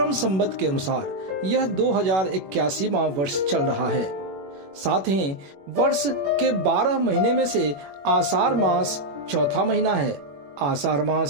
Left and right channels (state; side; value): late; left; 21 ms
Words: संवत के अनुसार यह 2081वां वर्ष चल रहा है। साथ ही वर्ष के 12 महीने में से आषाढ़ मास चौथा महीना है। आषाढ़